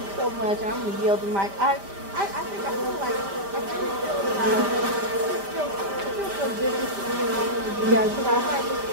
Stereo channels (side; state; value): left; late; 5.1 ms